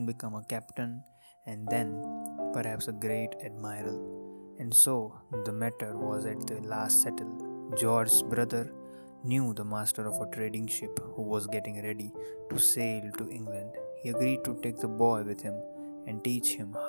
become a captain and then perhaps a great admiral. And so the matter was at the last settled. George's brother knew the master of a trading ship who was getting ready to sail to England. He agreed to take the boy with him and teach him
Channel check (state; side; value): inverted; both; correlation -1.00